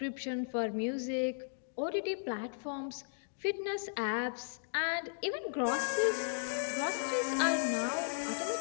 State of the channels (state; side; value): silent; right; digital silence